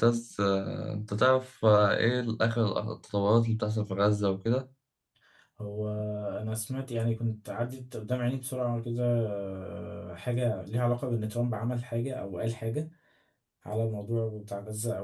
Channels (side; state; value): both; identical; correlation 1.00